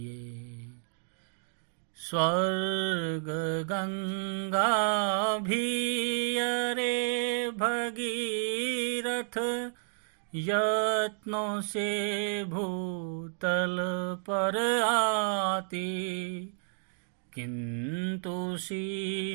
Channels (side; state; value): left; silent; digital silence